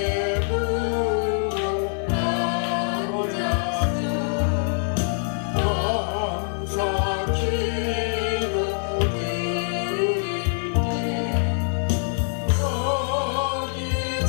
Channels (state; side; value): silent; right; digital silence